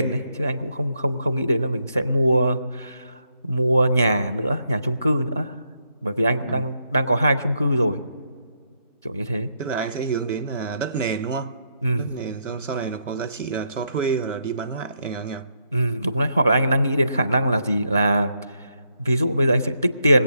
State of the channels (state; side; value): inverted; both; correlation -0.78